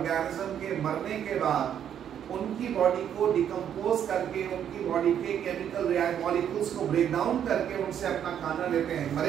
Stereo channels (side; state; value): left; quieter; 9.3 dB